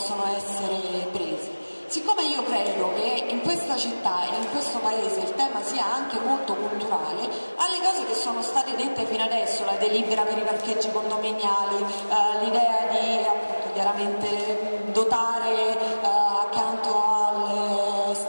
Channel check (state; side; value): inverted; both; correlation -1.00